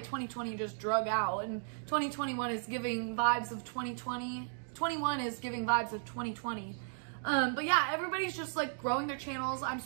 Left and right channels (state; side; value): silent; left; digital silence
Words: 2020 just drug out, and 2021 is giving vibes of 2020. 21 is giving vibes of 2020. But yeah, everybody's just like growing their channels. I'm